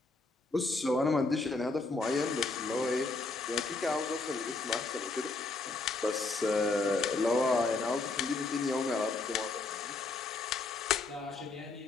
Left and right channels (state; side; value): quieter; right; 3.5 dB